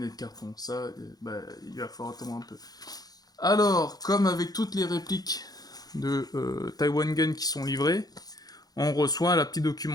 et de carton. Ça, il va falloir attendre un peu. Alors, comme avec toutes les répliques de Taiwan Gun qui sont livrées, on reçoit la petite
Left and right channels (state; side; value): late; right; 0.19 ms